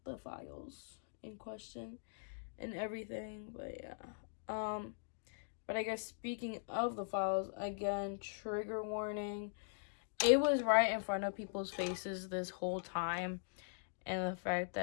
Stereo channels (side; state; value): right; silent; digital silence